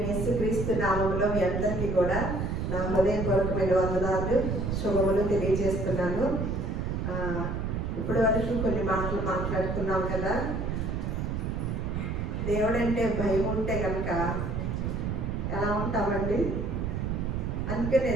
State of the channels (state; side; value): noise; right; rumble, 1 dB below the sound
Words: యేసుక్రీస్తు నామములో మీ అందరికీ కూడా నా హృదయపూర్వకమైన వందనాలు శుభములు తెలియజేస్తున్నాను. ఇప్పటి వరకు కొన్ని మాటలు మాట్లాడుకున్నాం కదా. దేవుడంటే భయం ఉంటే కనుక ఎలా ఉంటామండి? అందుకనే